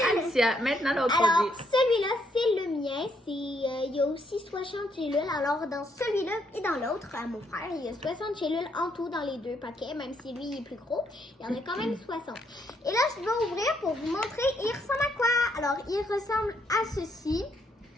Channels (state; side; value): normal; both; correlation 0.73